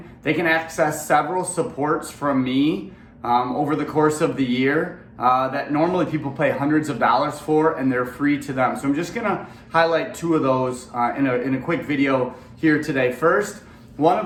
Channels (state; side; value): identical; both; correlation 1.00